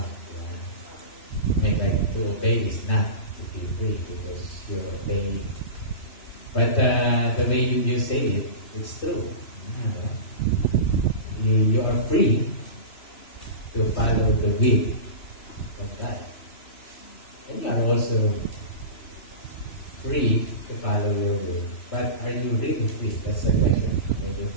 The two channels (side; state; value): right; late; 3.0 ms